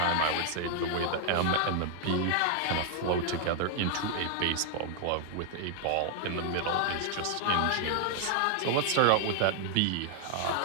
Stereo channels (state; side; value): different; both; correlation 0.00